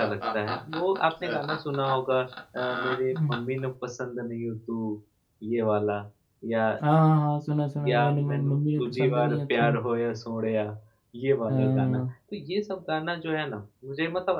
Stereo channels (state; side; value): identical; both; correlation 1.00